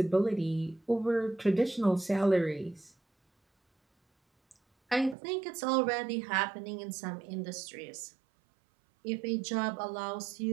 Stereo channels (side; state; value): left; drops out; at 5.2 s